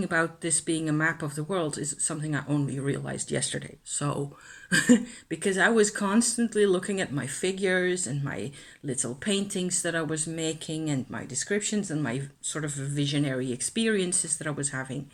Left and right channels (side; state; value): both; identical; correlation 1.00